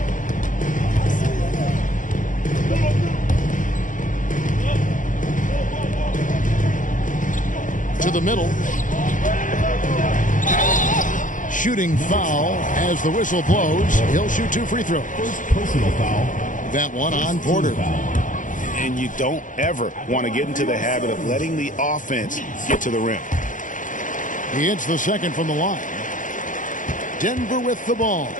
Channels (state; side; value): late; right; 0.38 ms